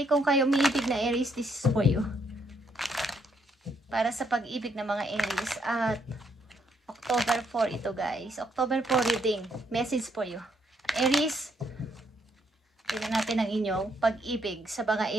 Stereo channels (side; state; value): both; normal; correlation 0.73